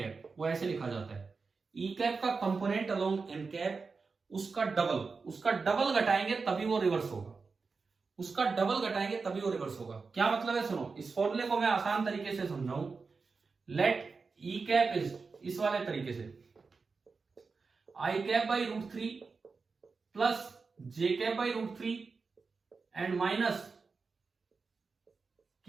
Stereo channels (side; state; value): left; quieter; 4.6 dB